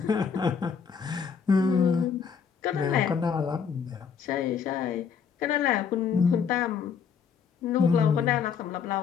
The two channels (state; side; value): quieter; right; 6.6 dB